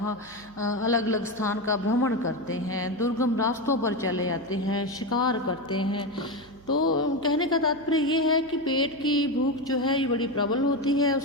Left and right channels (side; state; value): right; noise; hum, 25 dB below the sound